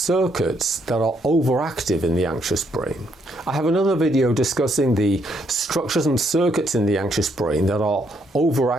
that are overactive in the anxious brain. I have another video discussing the structures and circuits in the anxious brain that are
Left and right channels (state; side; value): normal; both; correlation 0.73